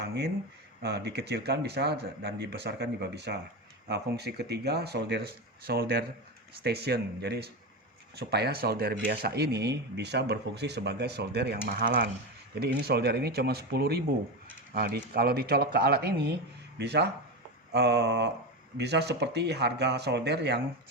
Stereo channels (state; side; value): normal; both; correlation 0.18